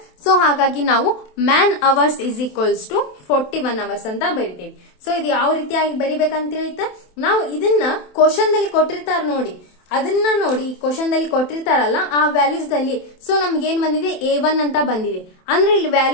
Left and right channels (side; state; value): right; late; 27 ms